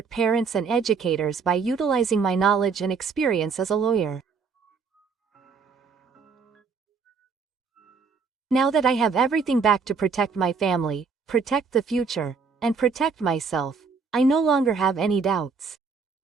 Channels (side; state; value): left; quieter; 5.2 dB